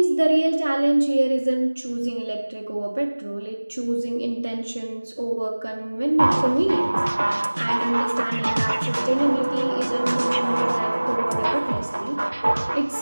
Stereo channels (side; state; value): both; inverted; correlation -1.00